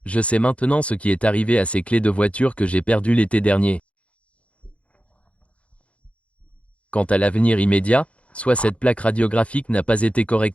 je sais maintenant ce qui est arrivé à ces clés de voiture que j'ai perdues l'été dernier. Quant à l'avenir immédiat, soit cette plaque radiographique n'a pas été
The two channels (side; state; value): right; late; 0.062 ms